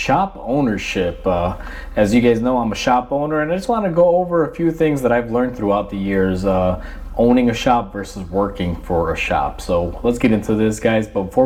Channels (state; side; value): identical; both; correlation 1.00